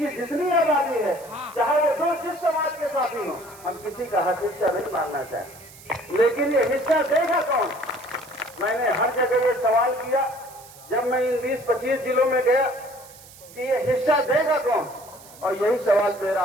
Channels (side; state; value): right; noise; hiss, 20 dB below the sound